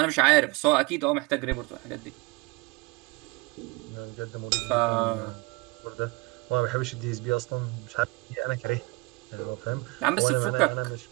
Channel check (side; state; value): left; quieter; 25.4 dB